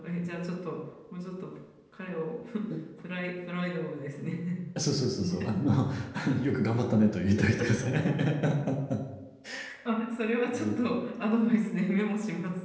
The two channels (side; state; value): both; identical; correlation 1.00